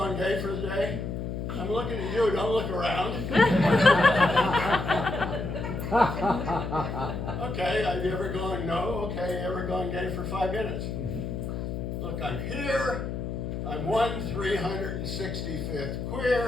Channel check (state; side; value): noise; left; hum, 4 dB below the sound